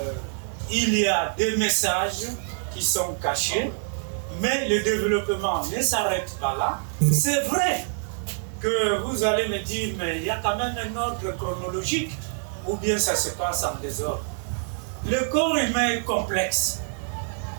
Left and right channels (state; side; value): silent; left; 61 dB below the other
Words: il y a des messages qui sont cachés, mais le développement ne s'arrête pas là. C'est vrai que vous allez me dire, mais il y a quand même un ordre chronologique, ou bien ça se passe en désordre. Le corps humain est complexe.